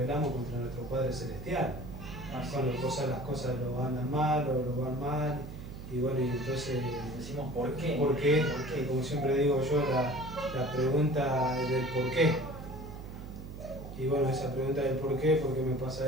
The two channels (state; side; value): noise; right; hum, 11 dB below the sound